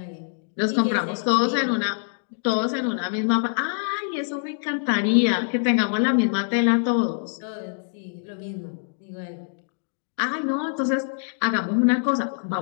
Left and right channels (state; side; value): silent; right; digital silence